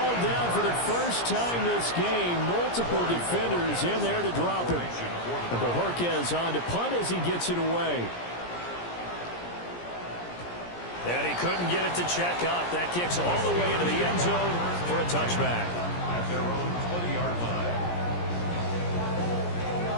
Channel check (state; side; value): late; right; 17 ms